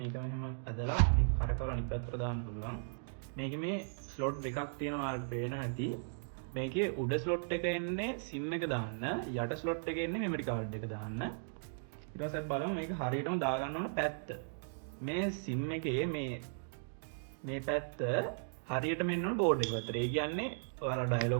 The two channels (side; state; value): left; silent; digital silence